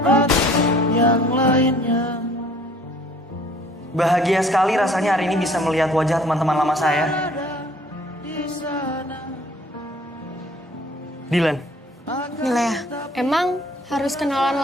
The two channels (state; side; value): normal; both; correlation 0.56